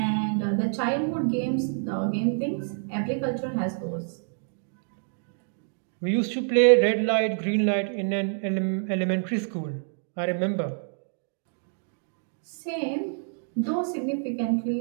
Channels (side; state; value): left; silent; digital silence